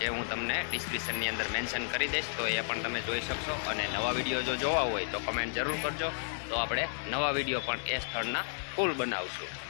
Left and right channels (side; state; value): right; silent; digital silence